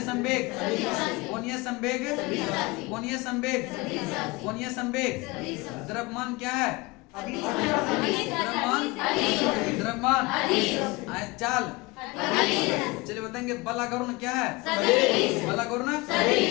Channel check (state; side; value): quieter; right; 23.8 dB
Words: संवेग, कोणीय संवेग, कोणीय संवेग, कोणीय संवेग। द्रव्यमान क्या है? द्रव्यमान चाल। चलिए बताएंगे बल आघूर्ण क्या है? बल आघूर्ण